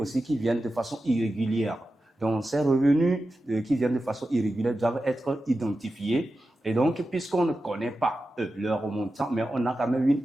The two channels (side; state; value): both; normal; correlation 0.92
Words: qui viennent de façon irrégulière. Donc, ces revenus qui viennent de façon irrégulière doivent être identifiés. Et donc, puisqu'on ne connaît pas leur montant, mais on a quand même une